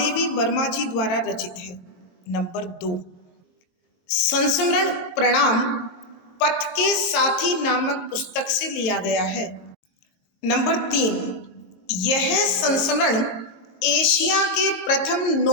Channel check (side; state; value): right; late; 22 ms